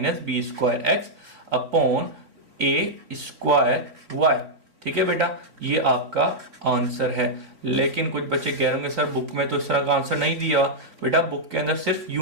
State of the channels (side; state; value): left; late; 3.3 ms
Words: b square x upon a square y, ठीक है बेटा। ये आपका आंसर है। लेकिन कुछ बच्चे कह रहे होंगे सर बुक में तो इस तरह का आंसर नहीं दिया, बेटा बुक के अंदर सिर्फ